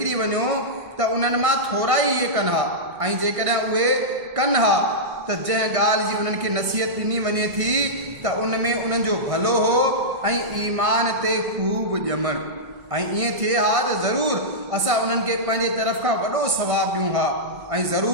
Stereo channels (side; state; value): left; late; 1.6 ms